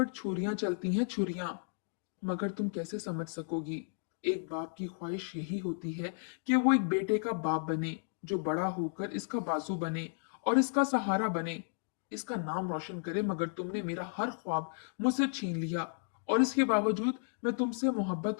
छुरियां चलती हैं, छुरियां। मगर तुम कैसे समझ सकोगी। एक बाप की ख्वाहिश यही होती है कि वो एक बेटे का बाप बने, जो बड़ा होकर इसका बाजू बने और इसका सहारा बने, इसका नाम रोशन करे। मगर तुमने मेरा हर ख्वाब मुझसे छीन लिया, और इसके बावजूद मैं तुमसे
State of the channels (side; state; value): right; silent; digital silence